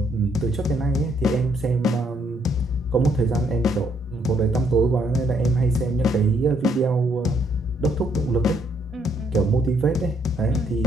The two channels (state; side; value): normal; both; correlation 0.70